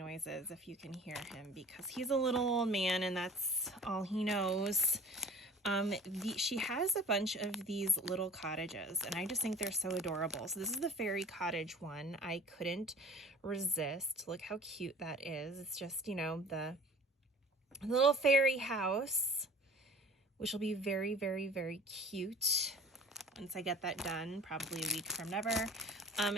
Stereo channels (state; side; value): normal; both; correlation 0.44